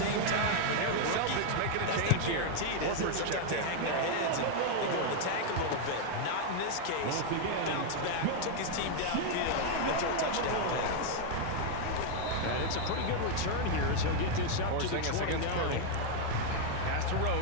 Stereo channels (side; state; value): both; different; correlation 0.00